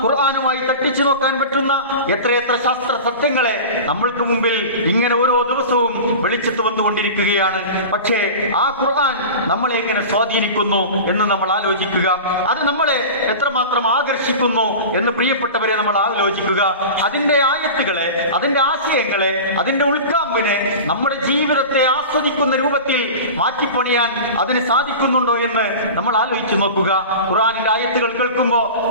ഖുർആനുമായി തട്ടിച്ചു നോക്കാൻ പറ്റുന്ന എത്രയെത്ര ശാസ്ത്ര സത്യങ്ങളെ നമ്മൾക്ക് മുമ്പിൽ ഇങ്ങനെ ഓരോ ദിവസവും വെളിച്ചത്ത് വന്നുകൊണ്ടിരിക്കുകയാണ്. പക്ഷേ ആ ഖുർആൻ നമ്മളെ എങ്ങനെ സ്വാധീനിക്കുന്നു എന്ന് നമ്മൾ ആലോചിക്കുക. അത് നമ്മളെ എത്രമാത്രം ആകർഷിക്കുന്നു എന്ന് പ്രിയപ്പെട്ടവരെ നമ്മൾ ആലോചിക്കുക. അതിന്റെ ആയത്തുകളെ, അതിന്റെ ആശയങ്ങളെ, അതിന്റെ ഉൾക്കാമ്പിനെ നമ്മുടെ ജീവിതത്തെ ആസ്വദിക്കുന്ന രൂപത്തിൽ മാറ്റിപ്പണിയാൻ അതിന് സാധിക്കുന്നുണ്ടോ എന്ന് നമ്മൾ ആലോചിച്ച് നോക്കുക. ഖുർആനിന്റെ ആയത്തുകൾ കേൾക്കുമ്പോൾ,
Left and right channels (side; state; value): both; inverted; correlation -0.32